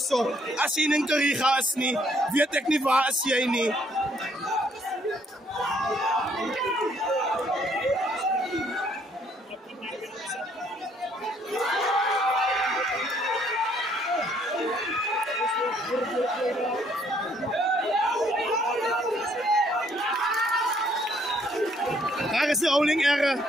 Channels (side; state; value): both; normal; correlation 0.66